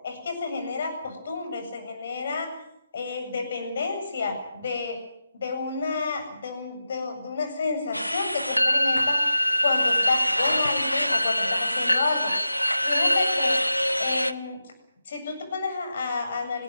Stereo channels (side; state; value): both; inverted; correlation -0.90